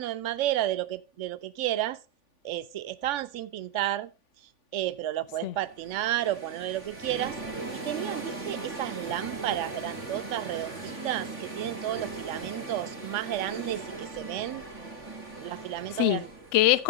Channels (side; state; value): right; late; 3.5 ms